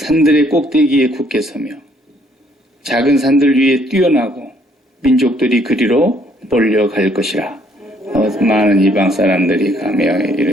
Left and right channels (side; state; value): both; normal; correlation 0.65